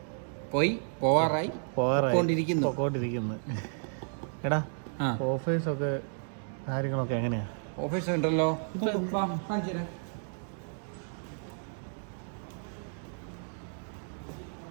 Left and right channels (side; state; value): left; silent; 56 dB below the other